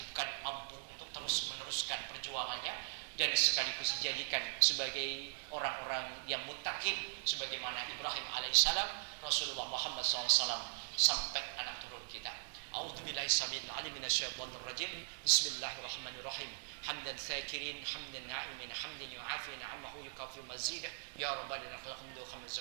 mampu untuk terus meneruskan perjuangannya dan sekaligus dijadikan sebagai orang-orang yang muttaqin sebagaimana Ibrahim alaihissalam, Rasulullah Muhammad SAW, sampai anak turun kita. A'udzubillahi samil alim minasyaitonir rajim. Bismillahirrahmanirrahim. Hamdan syakirin, hamdan na'imin, hamdan yu'afi ni'amahu yukafi mazidah. Ya rabbana lakal hamdu khamdu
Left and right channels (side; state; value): left; silent; digital silence